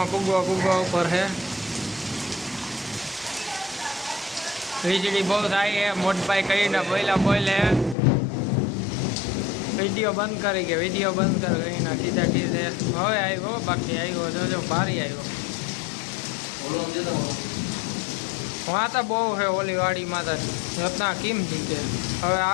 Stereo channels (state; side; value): drops out; right; at 8.0 s